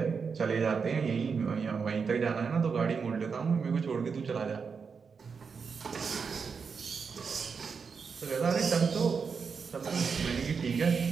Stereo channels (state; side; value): quieter; left; 5.7 dB